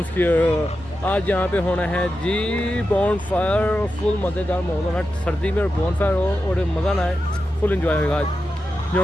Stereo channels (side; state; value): both; normal; correlation 0.90